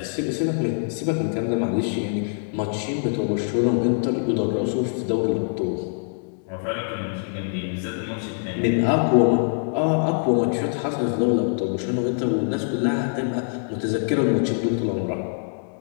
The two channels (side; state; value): right; silent; digital silence